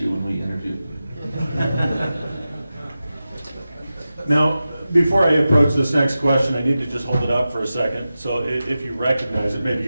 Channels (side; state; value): both; inverted; correlation -0.93